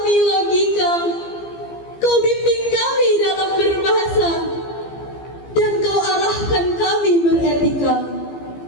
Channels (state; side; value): late; right; 15 ms